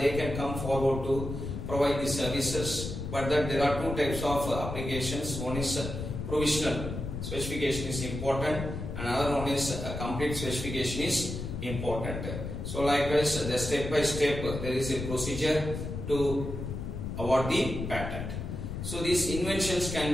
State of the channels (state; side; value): noise; left; rumble, 6 dB below the sound